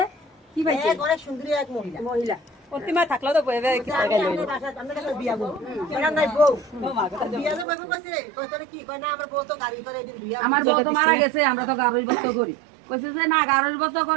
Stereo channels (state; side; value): drops out; left; at 7.7 s